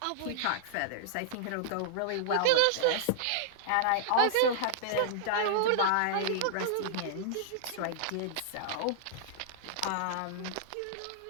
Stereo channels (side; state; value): both; different; correlation -0.01